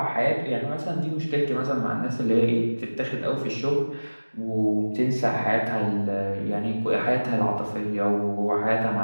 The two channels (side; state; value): both; inverted; correlation -1.00